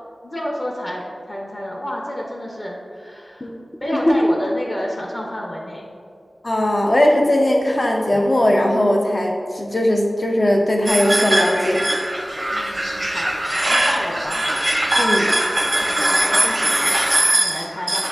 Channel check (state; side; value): normal; both; correlation 0.97